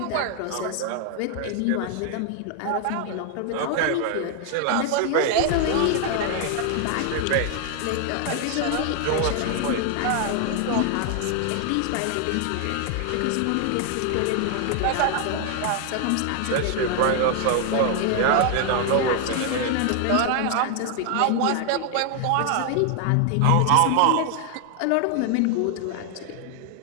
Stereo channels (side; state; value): both; different; correlation 0.00